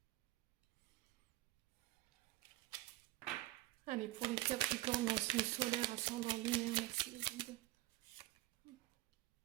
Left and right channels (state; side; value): quieter; left; 17.6 dB